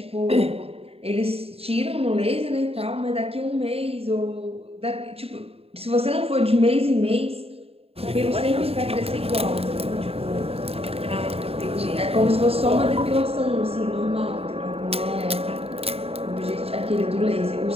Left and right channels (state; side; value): late; left; 0.28 ms